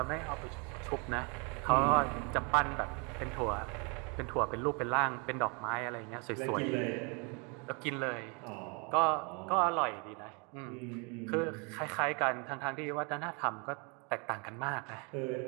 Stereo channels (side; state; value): left; quieter; 33.0 dB